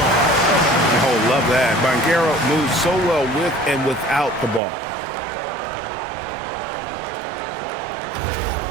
Oh, love that. Banchero moves so well with and without the ball.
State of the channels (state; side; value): drops out; left; at 4.6 s